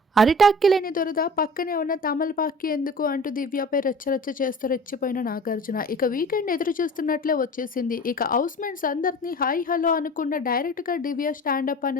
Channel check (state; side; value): normal; both; correlation 0.41